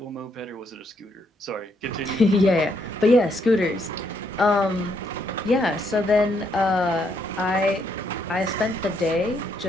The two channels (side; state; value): both; normal; correlation 0.74